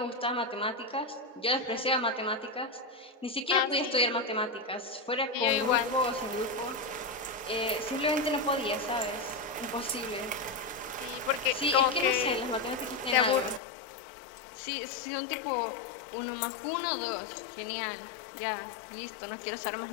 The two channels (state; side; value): drops out; right; at 13.6 s